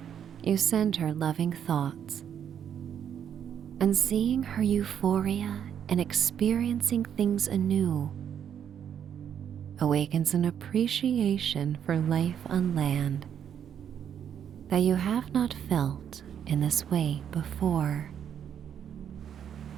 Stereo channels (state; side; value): quieter; left; 8.8 dB